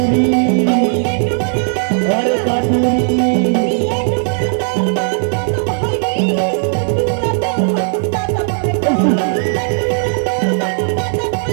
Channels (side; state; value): left; silent; digital silence